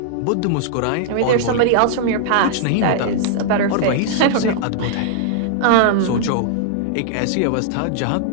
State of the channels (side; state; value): both; different; correlation -0.01